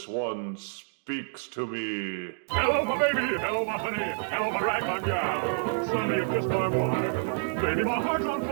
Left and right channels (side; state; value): left; silent; digital silence